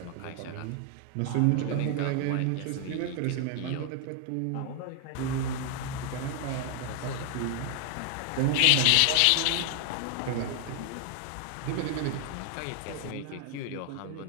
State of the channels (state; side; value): different; both; correlation 0.00